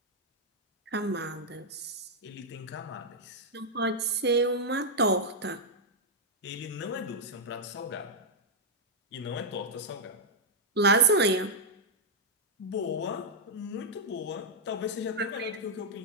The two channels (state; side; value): normal; both; correlation -0.03